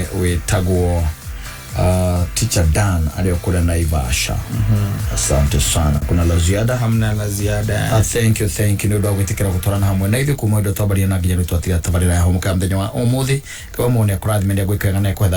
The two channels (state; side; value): identical; both; correlation 1.00